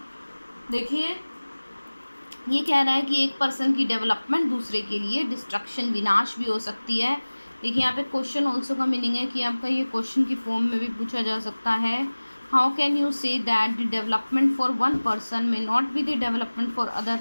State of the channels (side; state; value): both; inverted; correlation -1.00